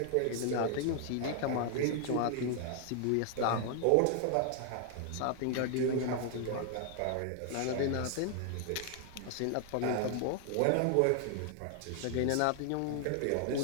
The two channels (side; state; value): both; different; correlation 0.00